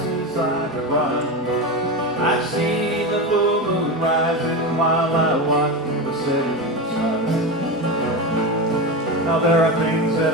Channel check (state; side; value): normal; both; correlation 0.20